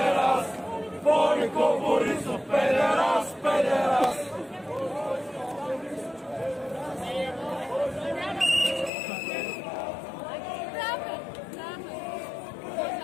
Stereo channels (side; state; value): right; drops out; at 8.9 s